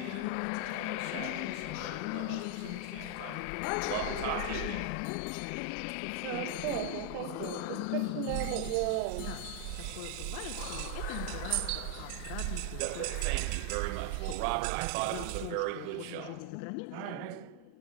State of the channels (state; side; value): different; both; correlation 0.00